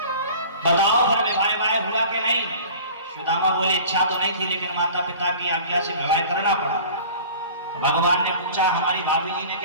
बताओ फिर विवाह हुआ कि नहीं? सुदामा बोले इच्छा तो नहीं थी, लेकिन माता पिता की आज्ञा से विवाह करना पड़ा। तो भगवान ने पूछा हमारी भाभी जी ने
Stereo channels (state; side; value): inverted; both; correlation -0.43